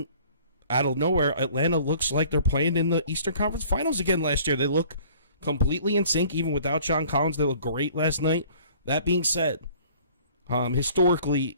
out of nowhere, Atlanta looks like they're playing in the Eastern Conference Finals again last year. They look completely in sync, even without John Collins. They look great last night. That being said, historically,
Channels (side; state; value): both; inverted; correlation -0.52